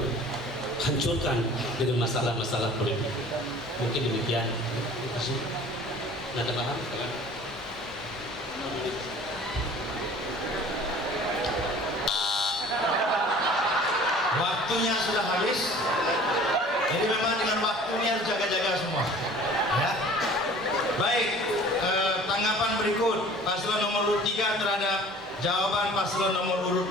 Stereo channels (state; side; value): normal; both; correlation 0.47